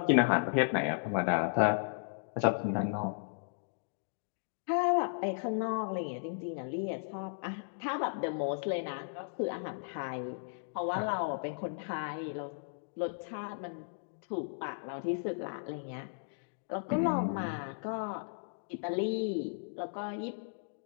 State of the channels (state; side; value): silent; right; digital silence